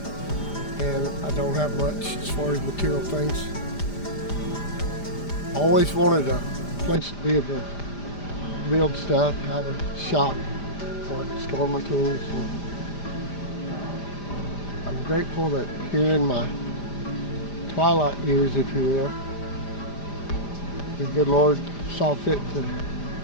and I don't have much as far as material things. I always wanted a place to be able to build stuff, have a shop where I could store my tools. And I'm grateful that here in my twilight years, if you will, the good Lord saw fit to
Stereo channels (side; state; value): right; late; 5.0 ms